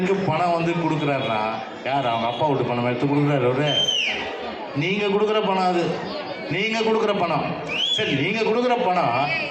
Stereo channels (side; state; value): both; identical; correlation 1.00